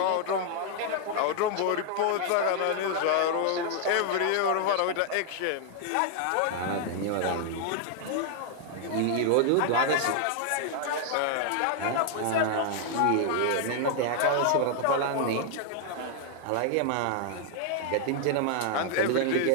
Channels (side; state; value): both; different; correlation 0.00